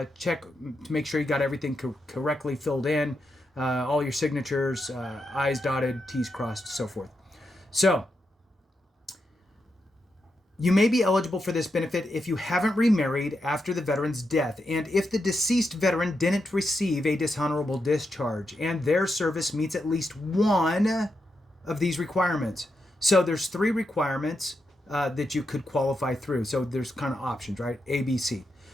make sure you got everything correctly filled in, all your signatures, I's dotted, T's crossed, so forth. So, You may be eligible for this benefit if you haven't remarried after the veteran's death and if the deceased veteran didn't receive a dishonorable discharge and their service meets at least one of these requirements. So there's 3 requirements that you could qualify through. So there's kind of options, right? A, B, C.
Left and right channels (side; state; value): both; normal; correlation 0.85